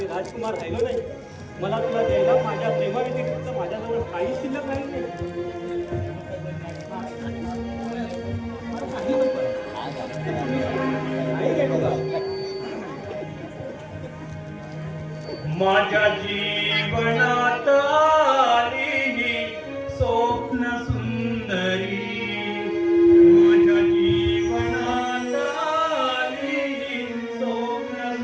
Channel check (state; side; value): identical; both; correlation 1.00